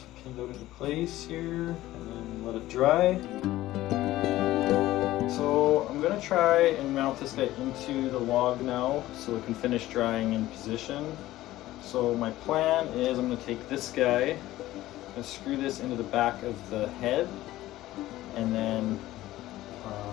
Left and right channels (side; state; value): right; quieter; 15.8 dB